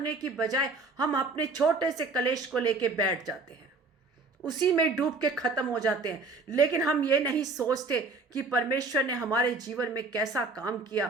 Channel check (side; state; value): left; quieter; 3.7 dB